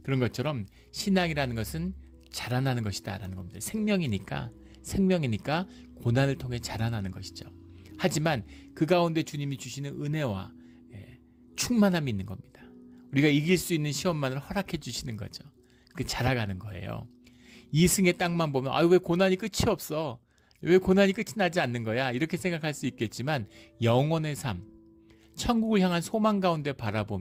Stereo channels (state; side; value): identical; both; correlation 1.00